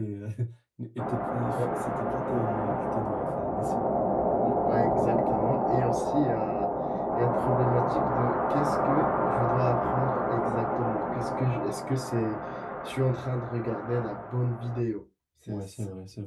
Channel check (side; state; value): both; identical; correlation 1.00